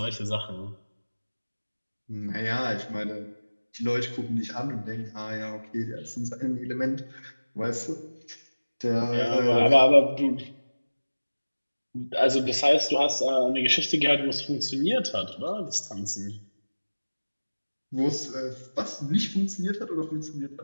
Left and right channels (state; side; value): inverted; both; correlation -1.00